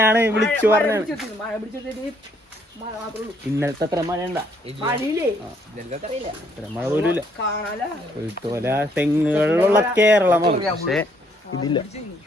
വിളിച്ചു പറഞ്ഞാണ്. ഇന്നലത്തെ അത്ര മഴ ഉണ്ടാ? അത്ര മഴ പോലും ഇല്ല. കുരുത്തോല തെങ്ങുകളിലുള്ള കേരളമാണ്, പക്ഷെ ഇതില്ല.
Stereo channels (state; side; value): normal; both; correlation 0.68